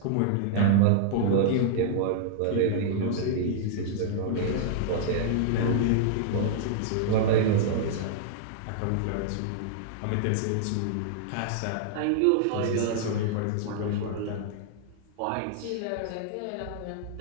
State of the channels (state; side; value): different; both; correlation -0.01